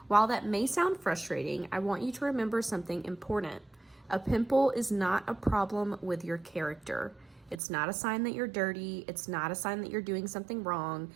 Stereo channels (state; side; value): drops out; left; at 7.6 s